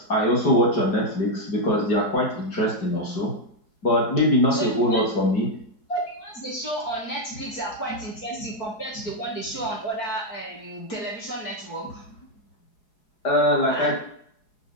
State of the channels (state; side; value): late; right; 4.8 ms